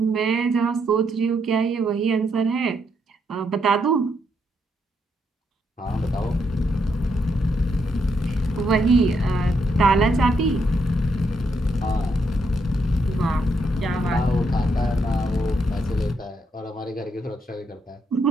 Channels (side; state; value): both; normal; correlation 0.77